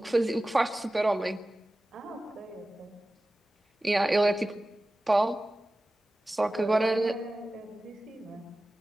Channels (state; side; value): normal; both; correlation 0.96